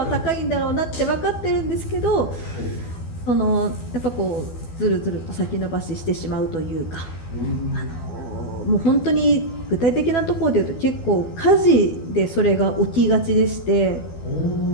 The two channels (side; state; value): right; late; 12 ms